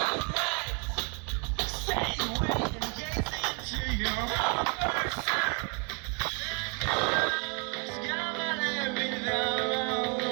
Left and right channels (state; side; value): quieter; left; 35.9 dB